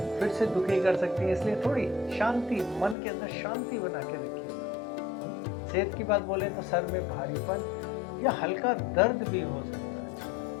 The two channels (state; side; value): drops out; right; at 3.0 s